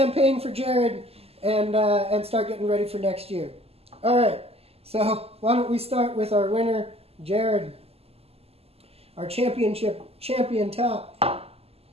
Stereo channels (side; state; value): left; late; 0.29 ms